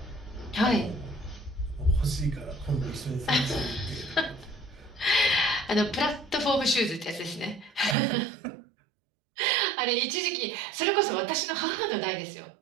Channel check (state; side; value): drops out; left; at 8.0 s